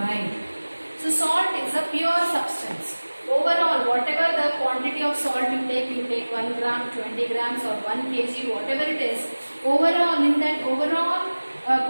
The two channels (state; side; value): inverted; both; correlation -1.00